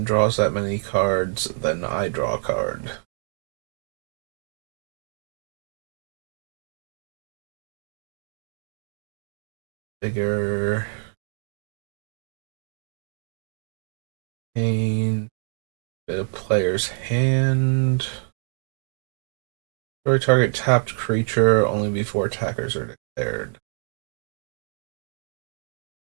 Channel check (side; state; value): left; silent; digital silence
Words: draws that many cards, then I draw a card. Bigger. Pain. Bit of player's hand. Destroy target tapped creature only before attackers are declared.